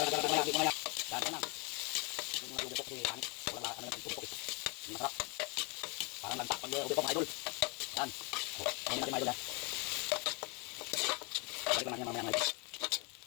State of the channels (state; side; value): quieter; right; 31.7 dB